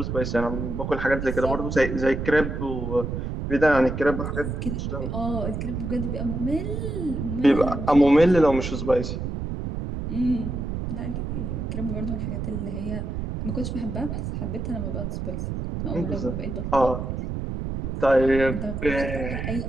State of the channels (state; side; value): noise; right; rumble, 4 dB below the sound